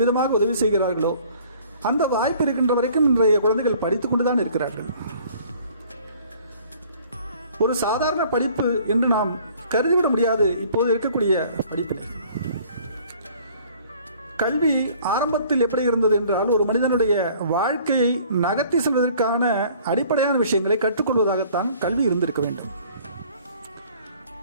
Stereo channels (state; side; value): inverted; both; correlation -0.54